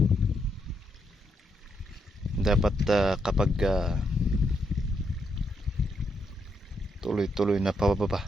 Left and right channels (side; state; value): both; normal; correlation 0.79